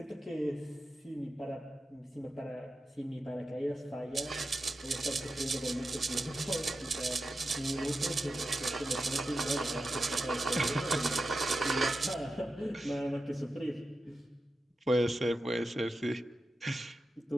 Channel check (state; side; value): normal; both; correlation 0.91